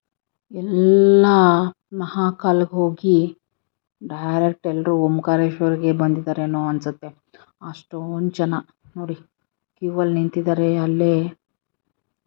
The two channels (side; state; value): right; silent; 66 dB below the other